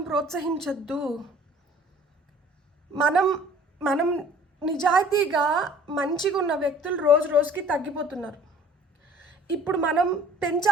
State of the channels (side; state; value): both; normal; correlation 0.51